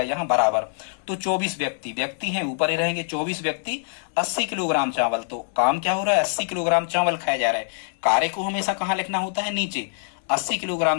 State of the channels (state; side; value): silent; right; digital silence